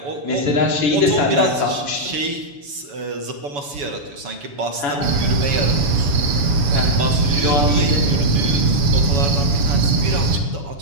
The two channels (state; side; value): late; left; 7.0 ms